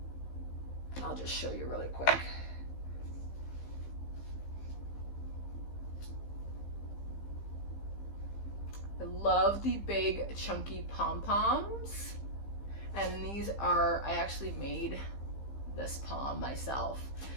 I'll just show you really quick. I love the big chunky pom-poms. And these are, I actually made this pom myself.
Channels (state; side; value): late; right; 15 ms